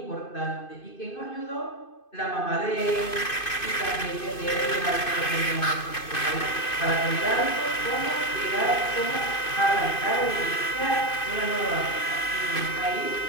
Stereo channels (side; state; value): right; late; 2.5 ms